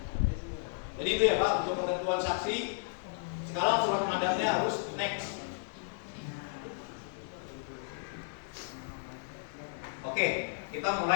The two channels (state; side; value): silent; right; digital silence